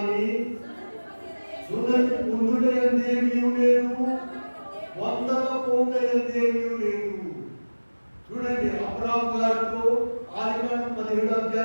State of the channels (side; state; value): both; inverted; correlation -1.00